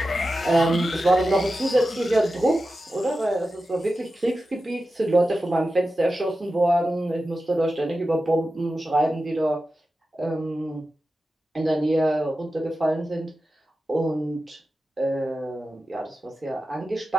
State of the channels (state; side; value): normal; both; correlation 0.93